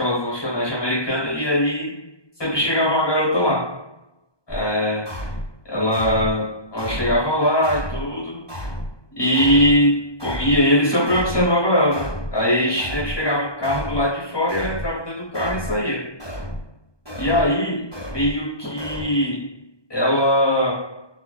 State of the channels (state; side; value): late; right; 1.2 ms